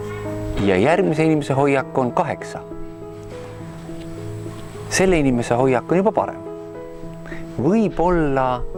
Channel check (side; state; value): both; identical; correlation 1.00